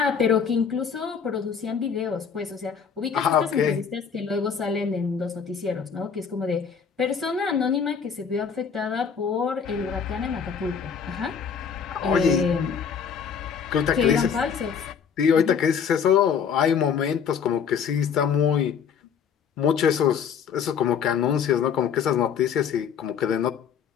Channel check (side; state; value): right; quieter; 6.9 dB